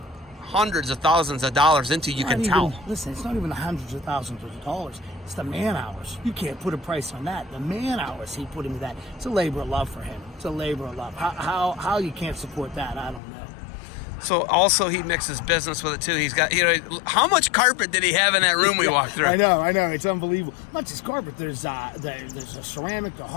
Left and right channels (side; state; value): right; drops out; at 13.2 s